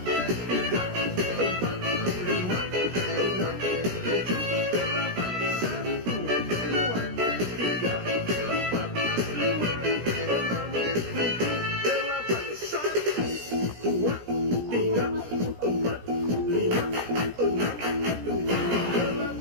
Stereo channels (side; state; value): left; late; 17 ms